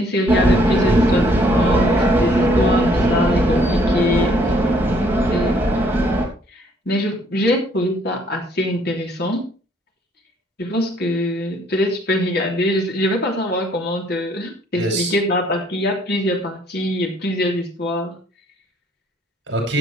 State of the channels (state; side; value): normal; both; correlation 0.64